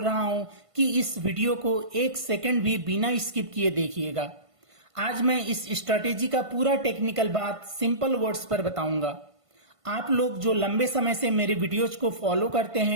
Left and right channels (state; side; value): late; left; 1.5 ms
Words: रहा हूं कि इस वीडियो को एक सेकंड भी बिना स्किप किए देखिएगा। आज मैं इस स्ट्रैटेजी का पूरा टेक्निकल बात सिंपल वर्ड्स पर बताऊंगा। आप लोग जो लंबे समय से मेरे वीडियोज को फॉलो करते